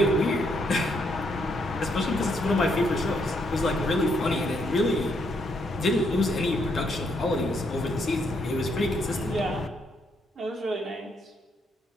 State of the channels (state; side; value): normal; both; correlation 0.74